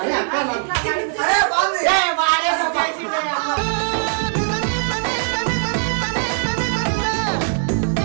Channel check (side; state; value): left; silent; digital silence